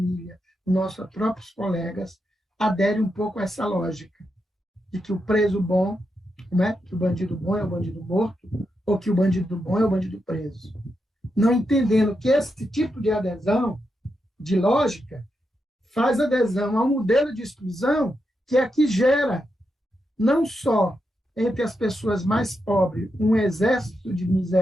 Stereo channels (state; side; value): normal; both; correlation 0.85